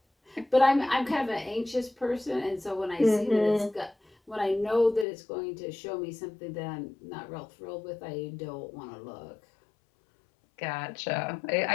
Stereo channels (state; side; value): drops out; right; at 5.1 s